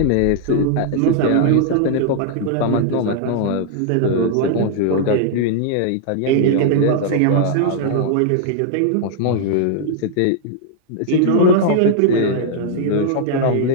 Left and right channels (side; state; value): both; different; correlation -0.01